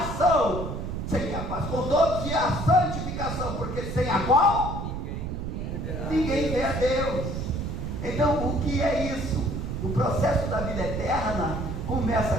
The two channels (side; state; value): right; noise; rumble, 4 dB below the sound